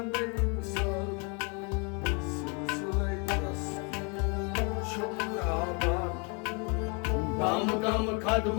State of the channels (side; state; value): right; quieter; 34.0 dB